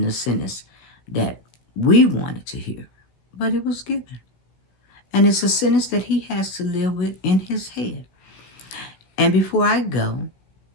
the sentence that we wanted to hear, but it was given. And it's a sentence that he has to live with in his head. And before I go,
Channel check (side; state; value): right; late; 16 ms